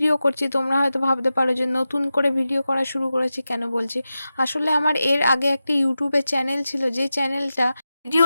করছি তোমরা হয়তো ভাবতে পারো যে নতুন করে ভিডিও করা শুরু করেছি কেন বলছি। আসলে আমার এর আগে একটা ইউটিউবে চ্যানেল ছিল, যে চ্যানেলটা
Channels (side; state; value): both; inverted; correlation -0.93